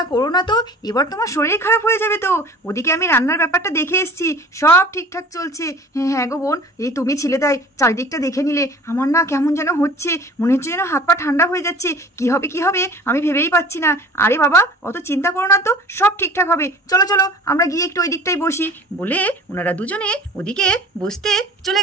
করো না তো, এবার তোমার শরীর খারাপ হয়ে যাবে তো। ওদিকে আমি রান্নার ব্যাপারটা দেখে এসেছি, সব ঠিকঠাক চলছে। হ্যাঁ গো বোন, এই তুমি ছিলে তাই চারিদিকটা দেখে নিলে, আমার না কেমন যেন হচ্ছে, মনে হচ্ছে যেন হাত পা ঠান্ডা হয়ে যাচ্ছে। কি হবে আমি ভেবেই পাচ্ছি না। আরে বাবা, অত চিন্তা করো না তো, সব ঠিকঠাক হবে। চলো চলো আমরা গিয়ে একটু ওই দিকটাই বসি বলে ওনারা দুজনে ওদিকে বসতে চলে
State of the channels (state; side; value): normal; both; correlation 0.44